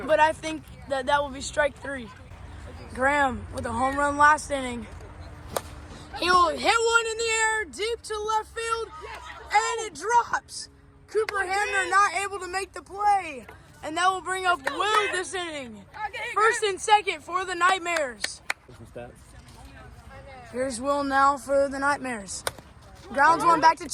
But I think that will be strike 3. Graham with a home run last inning. He will hit one in the air deep to left field, and it drops. Cooper Hamner not able to make the play, and that will bring up Will this inning. 1st and 2nd for the Nightmares. Here's Will now for the Nightmares. Grounds one back to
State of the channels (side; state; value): both; identical; correlation 1.00